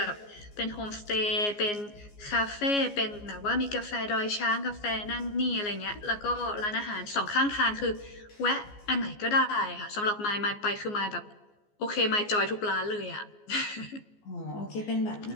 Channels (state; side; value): late; right; 14 ms